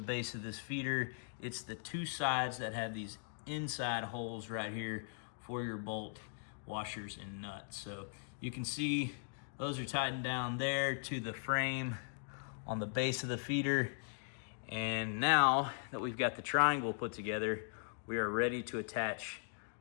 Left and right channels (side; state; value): right; silent; digital silence